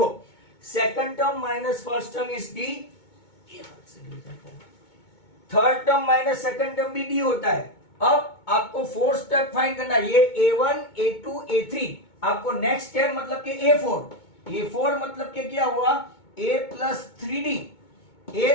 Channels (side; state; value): right; late; 2.2 ms